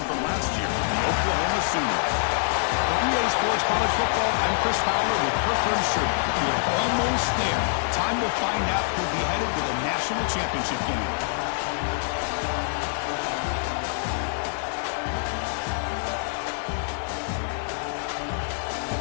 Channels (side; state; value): right; silent; digital silence